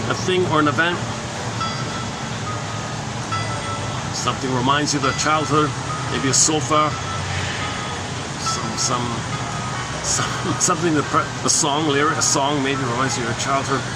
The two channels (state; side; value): identical; both; correlation 1.00